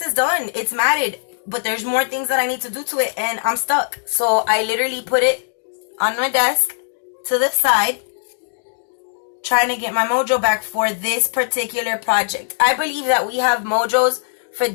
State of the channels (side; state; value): right; silent; digital silence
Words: is done. It's matted. But there's more things that I need to do to it. And I'm stuck. So I literally put it on my desk to the side, trying to get my mojo back for this particular project. I believe that we have mojos for